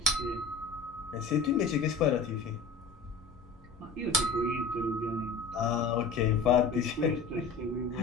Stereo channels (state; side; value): quieter; right; 4.3 dB